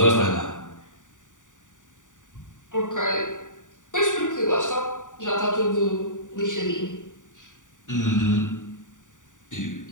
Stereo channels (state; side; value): late; right; 0.86 ms